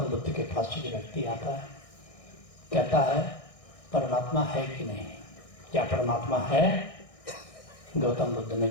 बुद्ध के पास एक व्यक्ति आता है, कहता है परमात्मा है कि नहीं, क्या परमात्मा है? गौतम बुद्ध ने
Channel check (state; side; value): late; right; 1.6 ms